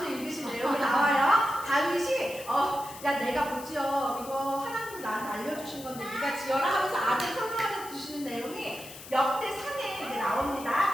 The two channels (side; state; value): left; noise; hiss, 15 dB below the sound